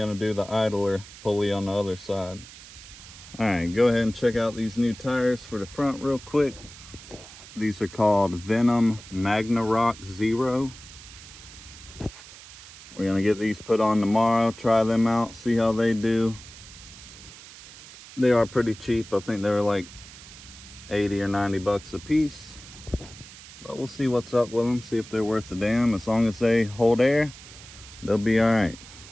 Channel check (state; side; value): noise; right; hiss, 17 dB below the sound